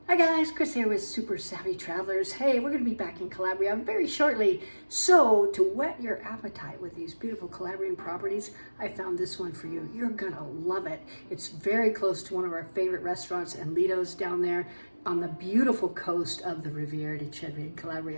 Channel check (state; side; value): inverted; both; correlation -1.00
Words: Hi guys, Chris here with Super Savvy Travelers. Hey, we're going to be back in Calabria very shortly. So to whet your appetite with these beautiful Calabrian properties, I found this one for you. You're going to love it. It's very close to one of our favorite restaurants and Lido's down there on the beautiful coast of the Riviera di Cedri in